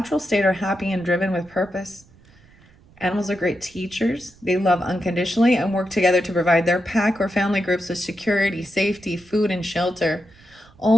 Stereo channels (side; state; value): right; noise; rumble, 27 dB below the sound